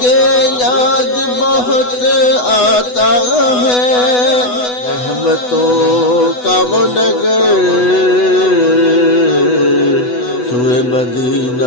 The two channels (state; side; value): late; right; 8.1 ms